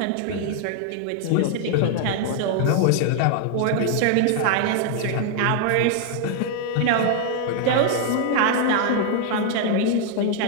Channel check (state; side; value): different; both; correlation 0.00